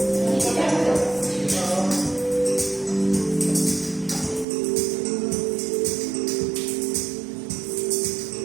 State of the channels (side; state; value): left; drops out; at 4.5 s